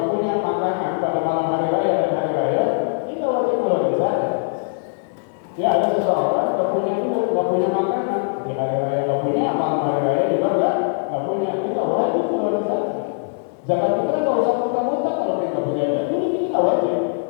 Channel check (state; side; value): silent; right; digital silence